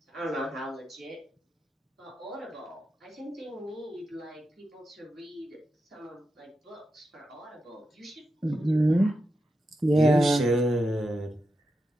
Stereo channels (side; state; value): both; normal; correlation 0.88